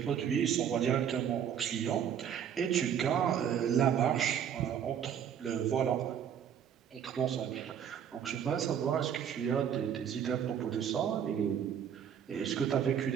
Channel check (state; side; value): quieter; left; 8.6 dB